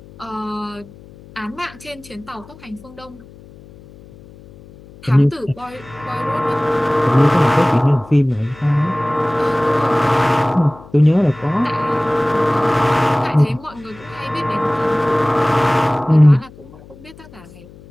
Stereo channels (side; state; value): left; noise; hum, 21 dB below the sound